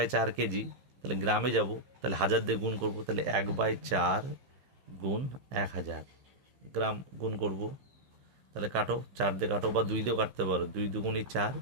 কেজি, তাহলে গ্রামে যাব, তাহলে 1000 দিয়ে গুণ করব। তাহলে 1/4 গুণ 1000 গ্রাম গুণ করব। তাহলে কাটো, 4 দিয়ে কাটো বা 2 দিয়েও কাটতে পারো, 2 দুগুণি 4।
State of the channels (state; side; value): late; left; 15 ms